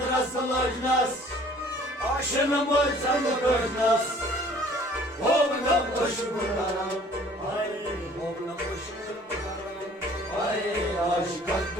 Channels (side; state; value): both; normal; correlation 0.53